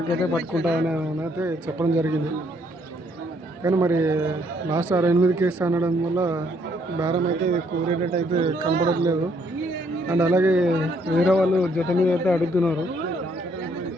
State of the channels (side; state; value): both; normal; correlation 0.69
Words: అయితే పట్టుకుంటారని అయితే చెప్పడం జరిగింది. కానీ మరి లాస్ట్ 68కి ఇస్తా అనడం వల్ల బేరం అయితే కూరేటట్టు అయితే కనపడట్లేదు. అండ్ అలాగే వేరే వాళ్ళు జత మీద అయితే అడుగుతున్నారు.